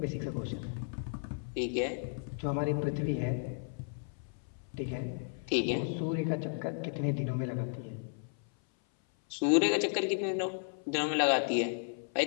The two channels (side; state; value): right; silent; 55 dB below the other